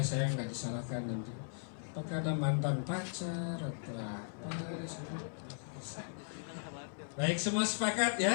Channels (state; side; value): silent; right; 53 dB below the other